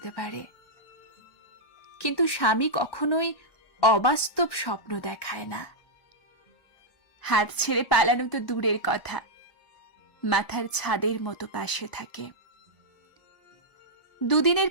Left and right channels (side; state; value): right; late; 1.2 ms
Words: পারে, কিন্তু স্বামী কখনোই অবাস্তব স্বপ্ন দেখায় না। হাত ছেড়ে পালানো তো দূরের কথা, মাথার ছাদের মতো পাশে থাকে। দুদিনের